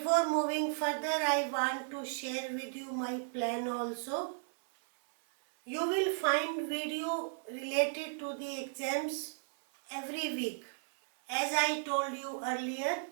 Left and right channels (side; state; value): left; silent; 55 dB below the other